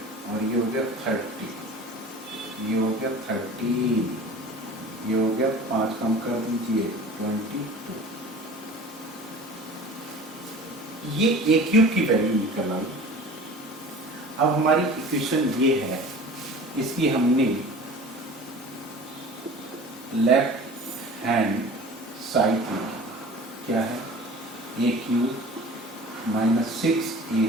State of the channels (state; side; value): normal; both; correlation 0.41